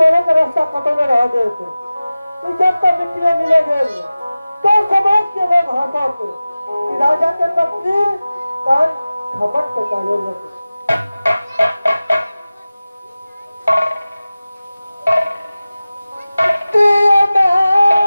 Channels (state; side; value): inverted; both; correlation -0.97